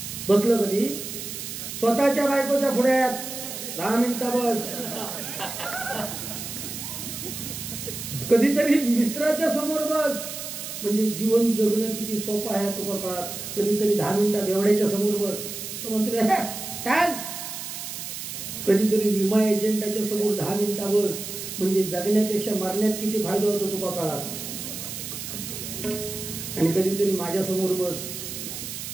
बसलं कधी स्वतःच्या बायकोच्या पुढ्यात 10 मिनिटं बस. कधीतरी मित्राच्या समोर बस, म्हणजे जीवन जगणं किती सोपं आहे तुका काळात. कधीतरी 10 मिनिटं बेवड्याच्या समोर बस, तो म्हणतो चाल. कधीतरी विमा एजंटाच्या समोर 10 मिनिटं बस, म्हणजे जगण्यापेक्षा मरण्यात किती फायदा होतो तुका काळात. आणि कधीतरी माझ्या समोर बस,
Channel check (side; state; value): right; noise; hiss, 8 dB below the sound